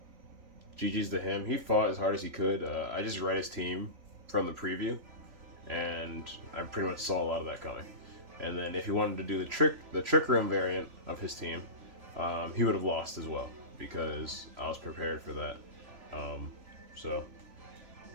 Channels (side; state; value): left; late; 3.4 ms